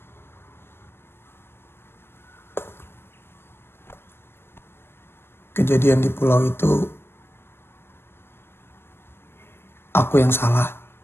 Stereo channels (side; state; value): right; late; 0.11 ms